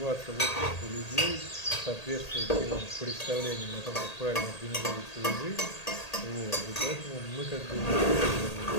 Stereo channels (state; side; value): late; right; 1.8 ms